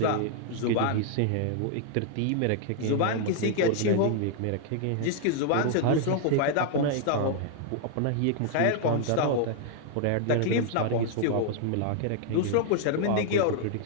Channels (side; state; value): both; different; correlation 0.00